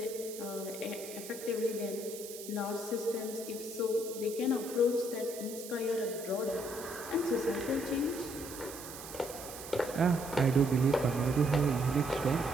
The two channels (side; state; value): right; noise; hiss, 12 dB below the sound